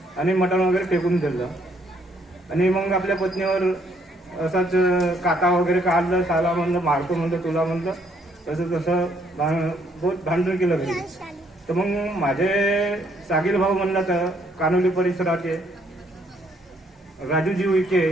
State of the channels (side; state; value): both; normal; correlation 0.69